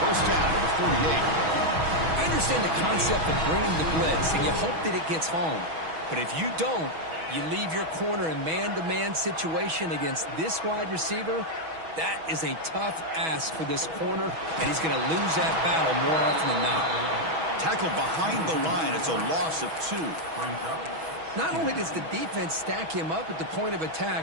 1st down to the 48. I understand the concept of bringing the blitz, and you hope that it gets home. But if you don't, you leave your corner in man-to-man situation against this wide receiver. That is a tough ask for this corner, and he's going to lose that battle more often than not. Tackled behind the line. It's a loss of 2. Not only does the defense stack him up at the point of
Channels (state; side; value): late; left; 6.2 ms